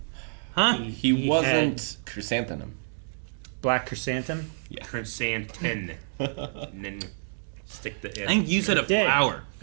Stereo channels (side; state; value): left; silent; digital silence